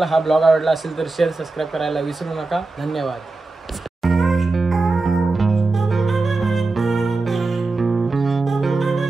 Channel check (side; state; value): left; quieter; 3.5 dB